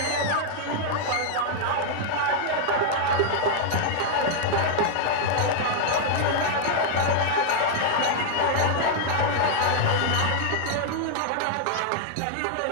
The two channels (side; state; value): both; different; correlation -0.01